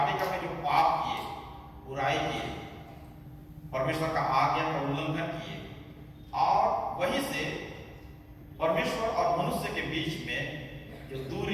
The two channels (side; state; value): both; identical; correlation 1.00